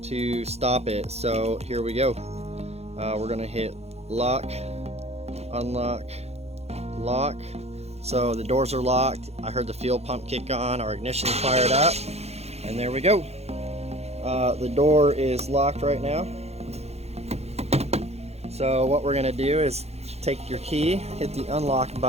to stop it. So here we go. We're gonna hit lock, unlock, lock. So the doors are locked. I heard the fuel pump kick on, our ignition fired up, and there we go. The door is locked right now. So what we're gonna do is take your key, hit the unlock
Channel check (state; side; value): late; left; 0.31 ms